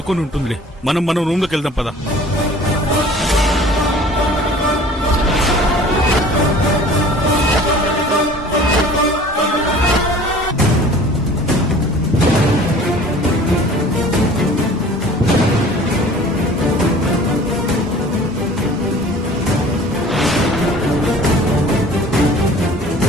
ఉంటుందిలే. మనం రూమ్ లోకి వెళ్దాం పదా.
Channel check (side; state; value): both; normal; correlation 0.47